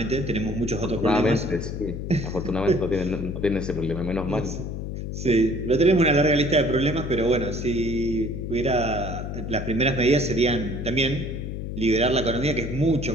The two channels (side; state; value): left; noise; hum, 6 dB below the sound